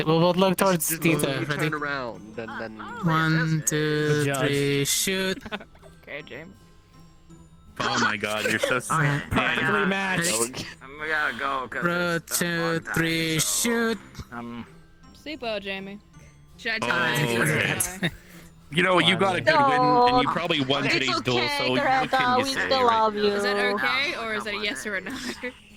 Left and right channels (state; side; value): identical; both; correlation 1.00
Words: we'll both look towards Just Tita. you Ready? turn around, then 1, 2, Judge. 3, shoot. Okay, James. Oh my god, you're so Perfectly matched. We gotta go. Ro, 2, 3, shoot. Sleep well, Jamie. Should I Oh, tell okay. You know, you got a good win, and you probably won It's today's duel, okay, so what Coretta, can you we say, still right? love you. Is that okay, or is that a yes or a no?